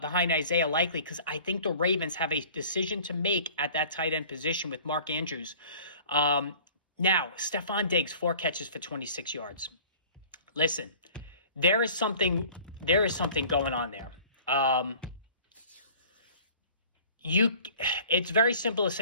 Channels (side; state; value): both; inverted; correlation -0.47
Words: Likely, because I think the Ravens have a decision to make at that tight end position with Mark Andrews. Now, Stephon Diggs, 4 catches for 26 yards. Listen, there is something going on there. It's very simple to